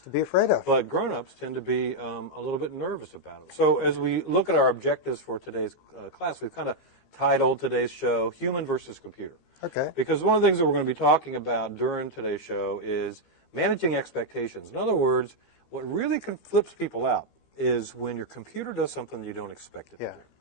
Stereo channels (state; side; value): late; right; 15 ms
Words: be afraid of? But grown-ups tend to be a little bit nervous about it. So as we look at our objectives for today's class, we've kind of titled today's show Human versus Computer. Okay. Because one of the things that we're going to be talking about during today's show is managing expectations. In other words, what really flips people out is when your computer does something you don't expect it to do.